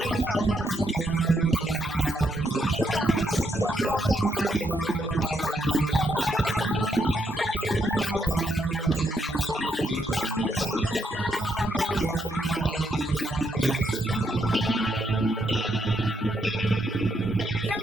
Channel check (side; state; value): both; normal; correlation 0.78